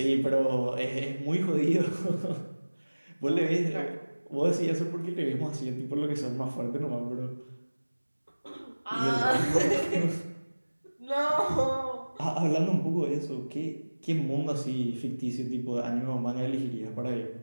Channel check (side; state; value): both; inverted; correlation -1.00